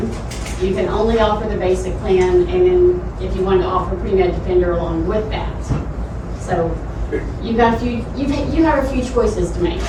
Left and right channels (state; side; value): identical; both; correlation 1.00